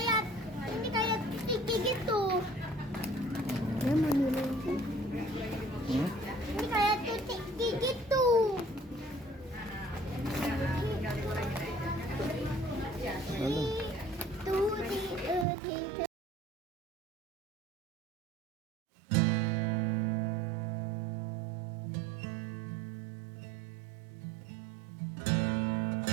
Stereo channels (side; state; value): left; drops out; at 15.5 s